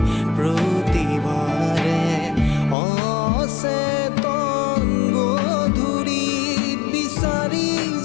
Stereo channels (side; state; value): right; drops out; at 2.8 s